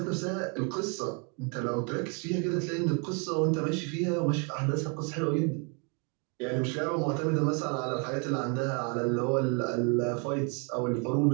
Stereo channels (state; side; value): quieter; left; 35.6 dB